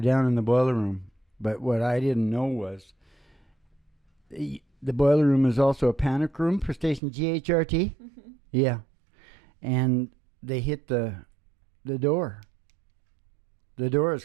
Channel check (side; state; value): left; drops out; at 7.0 s